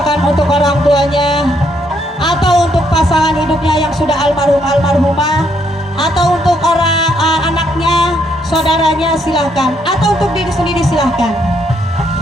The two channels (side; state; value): both; normal; correlation 0.73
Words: untuk orang tuanya, atau untuk pasangan hidupnya yang sudah almarhumah, atau untuk orang anaknya, saudaranya silahkan, atau untuk diri sendiri silahkan.